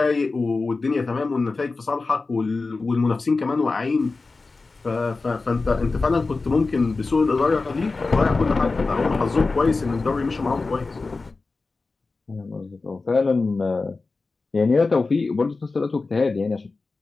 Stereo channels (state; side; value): quieter; right; 3.8 dB